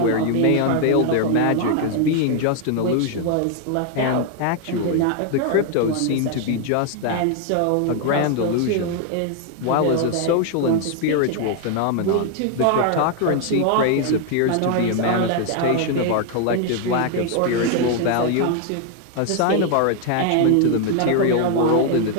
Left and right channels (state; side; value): different; both; correlation 0.00